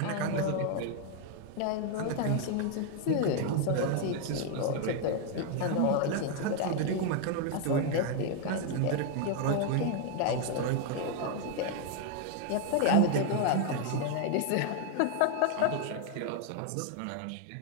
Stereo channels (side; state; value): both; different; correlation 0.01